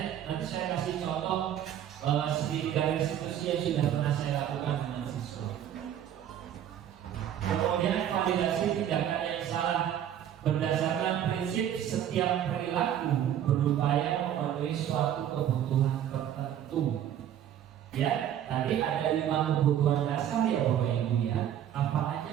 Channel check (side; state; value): left; quieter; 10.4 dB